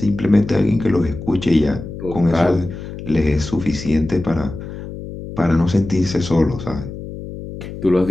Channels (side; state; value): left; noise; hum, 10 dB below the sound